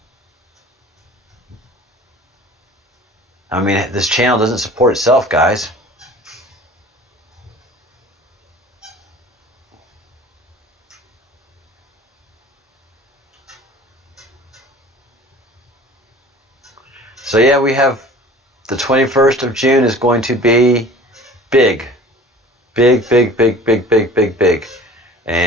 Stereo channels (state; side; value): normal; both; correlation 0.45